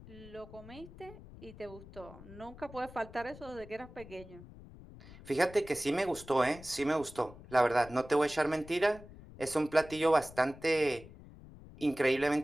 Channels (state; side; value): noise; left; rumble, 18 dB below the sound